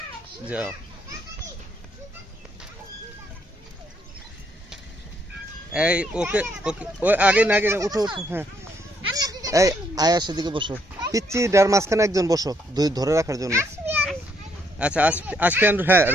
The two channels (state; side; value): normal; both; correlation 0.72